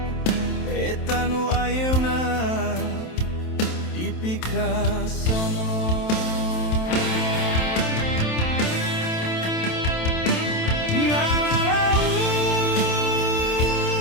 Eta nu ayeuna dipikasono. Ngalalau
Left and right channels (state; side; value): late; right; 27 ms